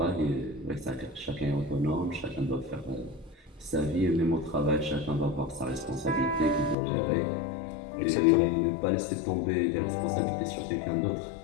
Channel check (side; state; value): right; drops out; at 6.8 s